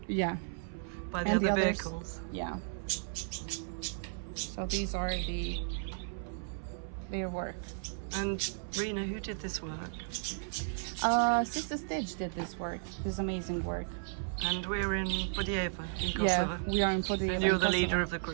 Yeah. by the And other the others- vehicles. Yeah. So these are their work. And Rena, who did this work? Sister Stitch did this work, this amazing work. And we're in Budjeva, in Kosovo. Yeah, we are in Podijeva. And you're in the Kosovo. leader of the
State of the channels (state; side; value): silent; left; 55 dB below the other